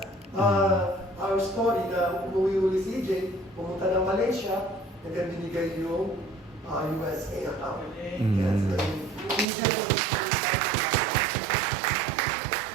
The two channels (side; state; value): left; drops out; at 9.5 s